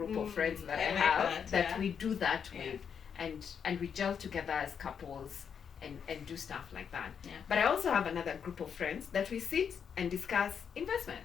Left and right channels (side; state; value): right; quieter; 7.3 dB